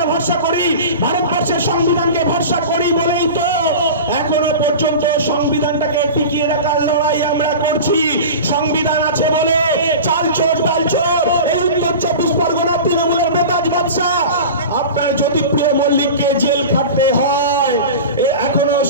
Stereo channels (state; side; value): inverted; both; correlation -0.32